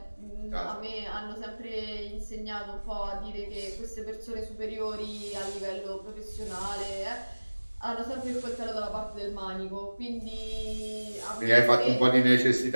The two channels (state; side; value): inverted; both; correlation -1.00